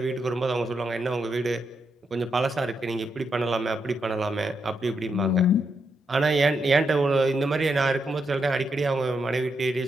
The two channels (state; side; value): normal; both; correlation 0.82